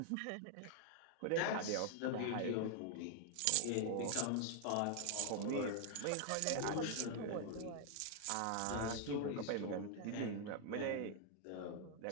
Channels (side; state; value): both; different; correlation 0.00